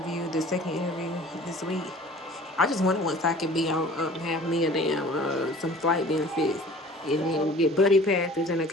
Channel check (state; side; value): normal; both; correlation 0.46